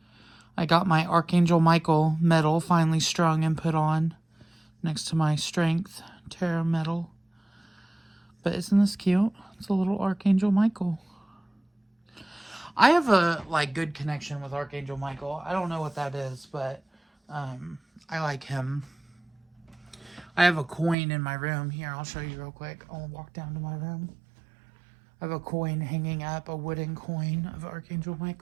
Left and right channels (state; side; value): drops out; left; at 21.0 s